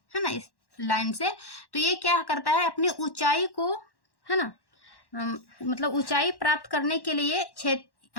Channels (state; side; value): late; right; 1.1 ms